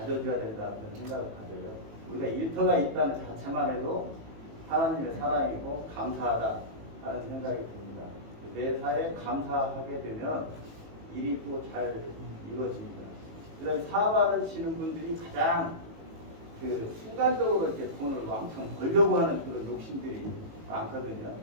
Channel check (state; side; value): late; left; 18 ms